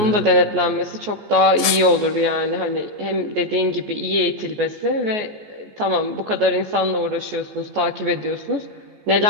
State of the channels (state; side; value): late; left; 14 ms